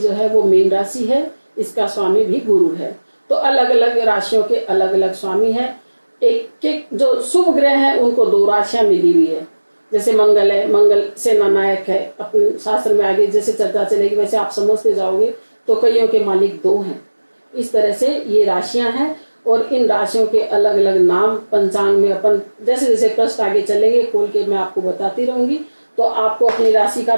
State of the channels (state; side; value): inverted; both; correlation -1.00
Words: है वो मीन राशि है, इसका स्वामी भी गुरु है। तो अलग अलग राशियों के अलग अलग स्वामी है। एक एक जो शुभ ग्रह है उनको 2 राशियां मिली हुई है, जैसे मंगल है, मंगल सेना नायक है। अपने शास्त्र में आगे जैसे चर्चा चलेगी वैसे आप समझते जाओगे, तो कईयों के मालिक 2 हैं। इस तरह से ये राशियां हैं और इन राशियों के अलग अलग नाम पंचांग में अपन जैसे जैसे प्रश्न आगे चलेंगे खोल के मैं आपको बताती रहूंगी, तो आपको अपनी राशि का